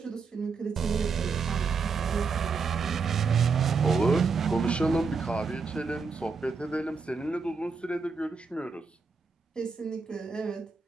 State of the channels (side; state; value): left; quieter; 4.8 dB